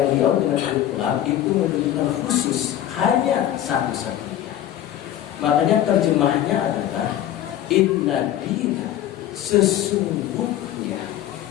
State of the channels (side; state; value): right; quieter; 12.1 dB